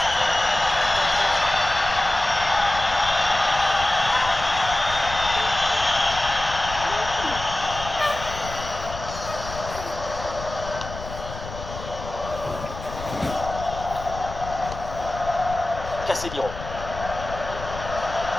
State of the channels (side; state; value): left; noise; rumble, 10 dB below the sound